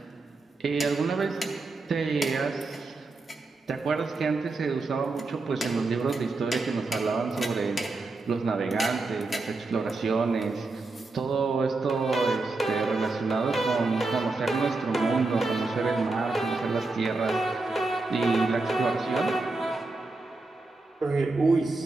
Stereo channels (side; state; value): left; quieter; 3.4 dB